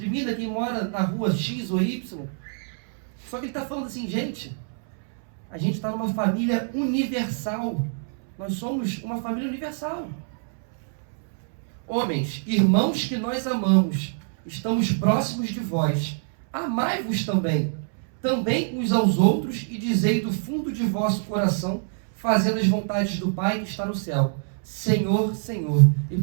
quem mora na rua X ou Y. Só que ele está falando assim: gente, a gente está numa família universal. Nós somos uma família universal. Homens, irmãos que nós amamos, estamos próximos de vós. Amai-vos também uns aos outros, e dizei do fundo de vosso coração, fazendo as vontades do Pai que está no céu. Senhor, Senhor, e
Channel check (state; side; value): silent; left; 62 dB below the other